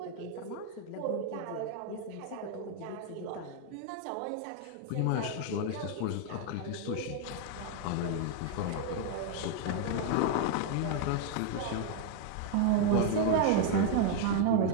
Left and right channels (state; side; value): different; both; correlation 0.00